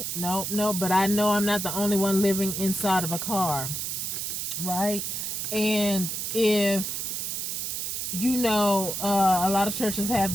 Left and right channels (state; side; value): noise; right; hiss, 3 dB below the sound